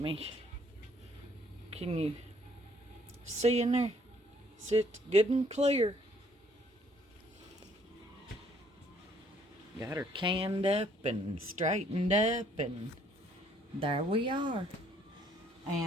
Can you see in there? Sit good and clear. Got her canned up and straightened up, and there we are.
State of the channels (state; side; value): normal; both; correlation 0.64